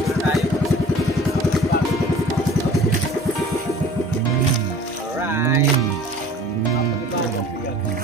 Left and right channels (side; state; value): both; normal; correlation 0.47